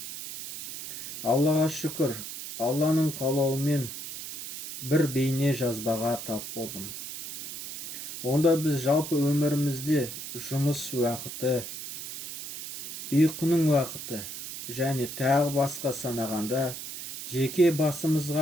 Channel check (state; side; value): noise; right; hiss, 9 dB below the sound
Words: Аллаға шүкір, Алланың қалауымен бір бейне жазбаға тап болдым. Онда біз жалпы өмірімізде жұмыс уақыты, ұйқының уақыты және тағы басқа санағанда жеке